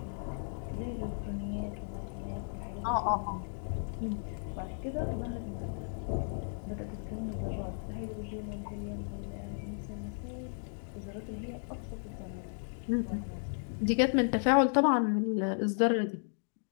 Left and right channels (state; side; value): silent; right; digital silence